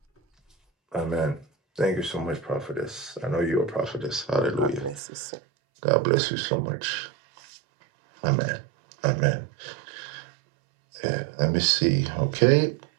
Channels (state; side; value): drops out; left; at 5.0 s